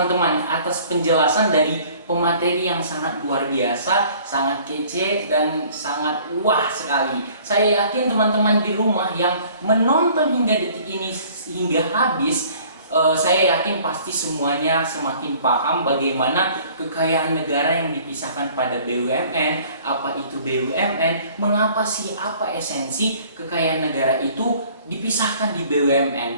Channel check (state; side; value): inverted; both; correlation -0.53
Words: atas penjelasan dari pemateri yang sangat luar biasa, sangat kece dan sangat wah sekali. Saya yakin teman-teman di rumah yang menonton hingga detik ini hingga habis, saya yakin pasti semuanya semakin paham bagaimana kekayaan negara yang dipisahkan pada BUMN, apa itu BUMN, mengapa sih, apa esensi kekayaan negara itu dipisahkan di BUMN,